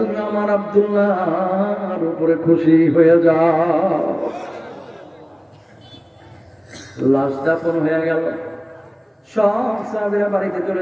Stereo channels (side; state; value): both; identical; correlation 1.00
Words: আমার আব্দুল্লাহর উপরে খুশি হয়ে যাও। লাশ দাফন হয়ে গেল। সব সাহাবীরা বাড়িতে চলে